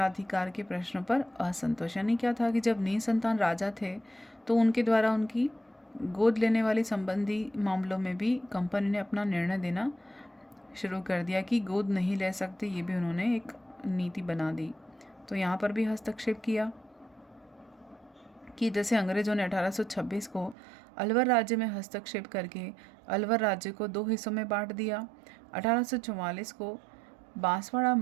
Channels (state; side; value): drops out; left; at 20.6 s